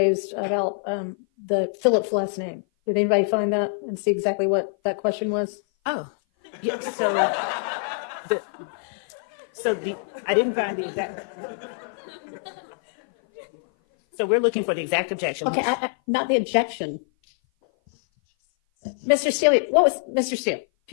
about the Phillips last name. Did anybody find that and see exactly what that question was? Oh, yeah. I didn't find the exact. So we're looking for the exact objection. Okay, not the objection. Mr. Steele, Mr. Steele,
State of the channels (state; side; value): silent; right; 57 dB below the other